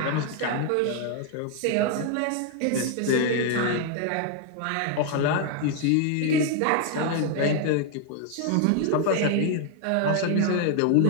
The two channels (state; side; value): different; both; correlation 0.00